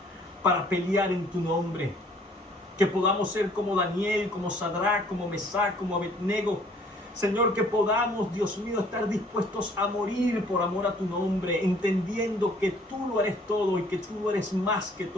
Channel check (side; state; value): both; normal; correlation 0.58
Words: para pelear en tu nombre. Que podamos ser como Daniel, como Sadrach, como Mesac, como Abednego. Señor, que podamos, Dios mío, estar dispuestos a morir por amor a tu nombre, entendiendo que tú lo eres todo y que tú lo eres más que